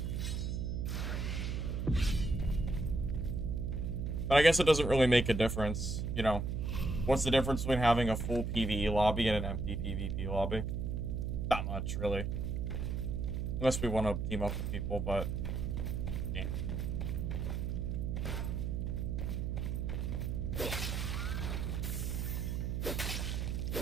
But I guess it doesn't really make a difference, you know. What's the difference between having a full PvE lobby and an empty PvP lobby? Not much, really. Unless we want to team up with people, but... yeah.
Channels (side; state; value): right; noise; hum, 1 dB below the sound